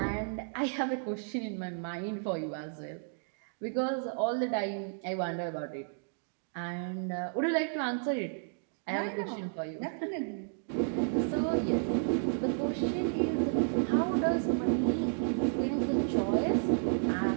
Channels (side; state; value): left; silent; digital silence